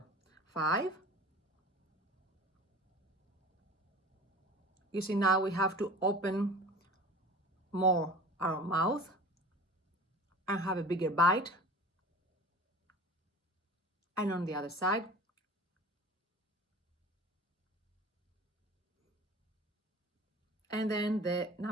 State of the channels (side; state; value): both; normal; correlation 0.40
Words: 5. You see, now we have to open more our mouth and have a bigger bite. And on the other side. And then the